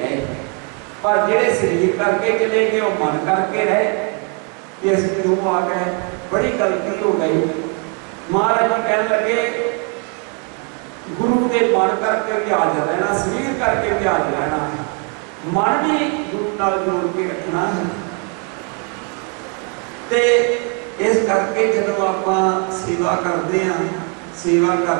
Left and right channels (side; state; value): left; quieter; 36.5 dB